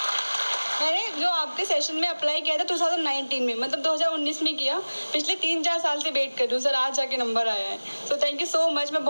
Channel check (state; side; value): inverted; both; correlation -1.00